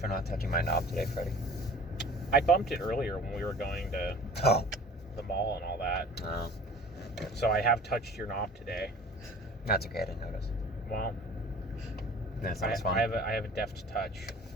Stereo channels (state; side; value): normal; both; correlation 0.45